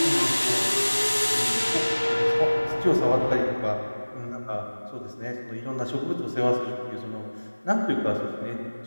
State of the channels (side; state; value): both; inverted; correlation -1.00